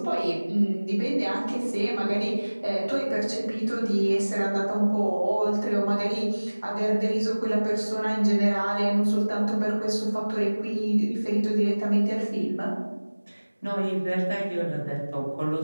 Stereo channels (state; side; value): inverted; both; correlation -1.00